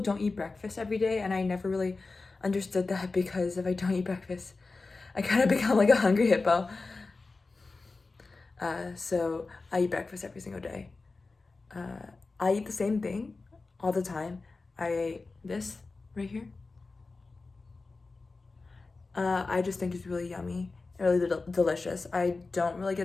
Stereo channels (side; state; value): right; quieter; 3.8 dB